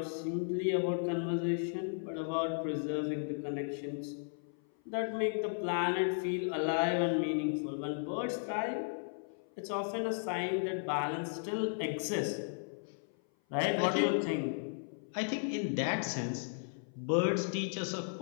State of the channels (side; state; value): right; silent; 54 dB below the other